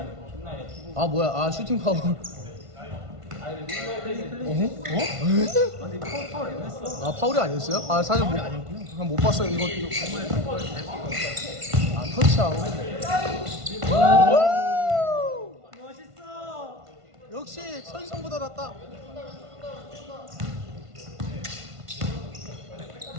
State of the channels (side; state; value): left; late; 1.5 ms